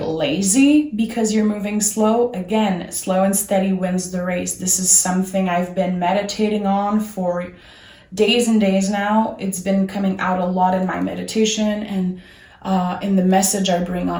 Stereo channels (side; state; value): both; identical; correlation 1.00